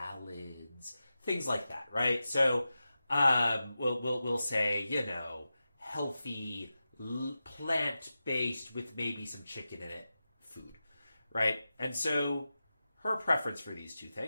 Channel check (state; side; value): inverted; both; correlation -0.92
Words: things like that, right? So we'll say, healthy, plant-based with maybe some chicken in it food, right? And so her preference for these two